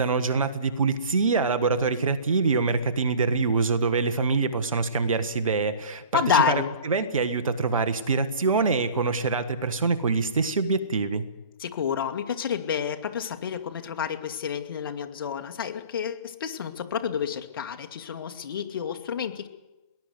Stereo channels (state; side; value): inverted; both; correlation -0.42